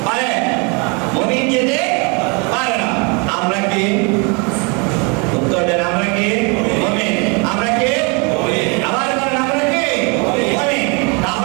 পারে, মুমিন যেতে পারে না। আমরা কি উত্তর দেন? আমরা কি মুমিন? আমরা কি মুমিন? আবার বলেন আমরা কি মুমিন?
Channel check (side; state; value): left; quieter; 32.0 dB